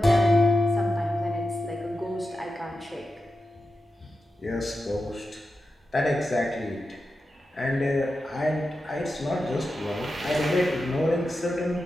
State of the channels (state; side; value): normal; both; correlation 0.90